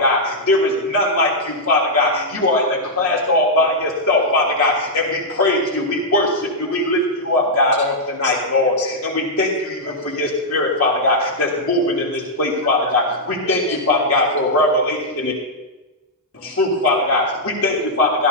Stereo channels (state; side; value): normal; both; correlation -0.07